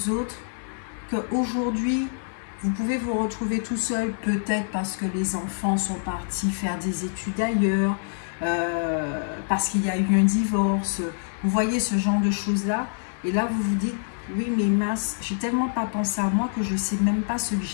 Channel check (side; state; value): right; silent; 61 dB below the other